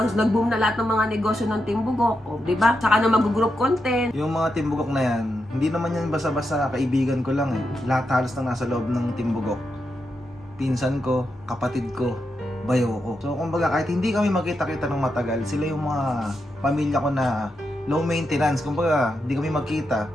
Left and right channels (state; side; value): normal; both; correlation 0.85